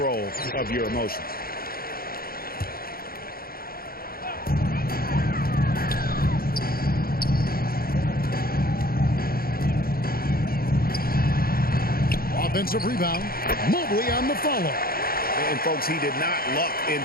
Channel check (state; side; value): late; right; 0.43 ms